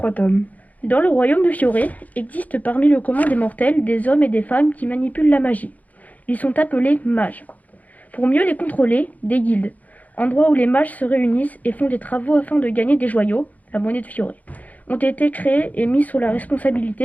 tomes. Dans le royaume de Fioré existe parmi le commun des mortels des hommes et des femmes qui manipulent la magie. Ils sont appelés mages. Pour mieux les contrôler, des guildes, endroits où les mages se réunissent et font des travaux afin de gagner des joyaux, la monnaie de Fioré. ont été créés et mis sous la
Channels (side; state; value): right; late; 0.077 ms